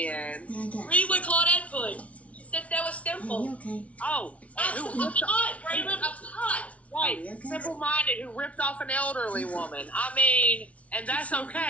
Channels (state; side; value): late; right; 0.065 ms